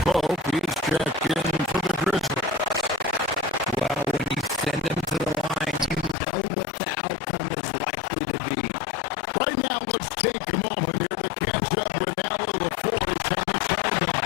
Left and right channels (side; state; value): right; drops out; at 6.2 s